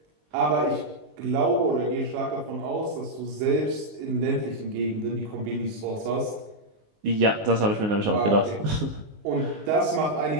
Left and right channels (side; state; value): left; late; 19 ms